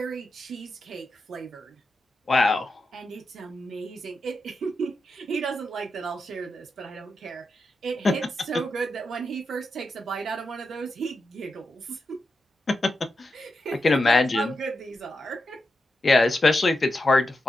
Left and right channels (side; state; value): both; normal; correlation 0.87